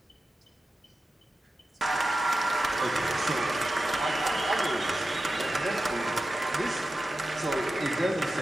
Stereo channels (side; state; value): both; normal; correlation 0.93